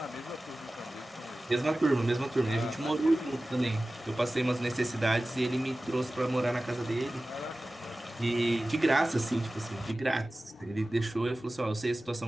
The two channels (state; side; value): normal; both; correlation 0.96